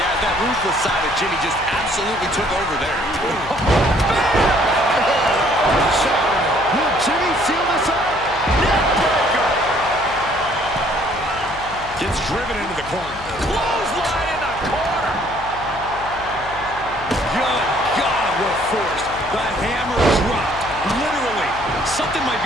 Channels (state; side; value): noise; left; hum, 15 dB below the sound